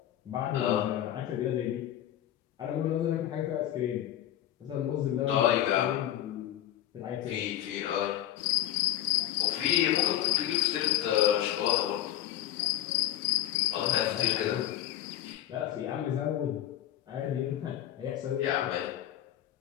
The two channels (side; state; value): right; quieter; 12.3 dB